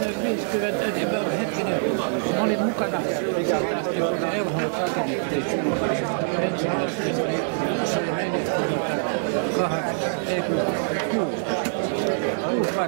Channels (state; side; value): silent; left; digital silence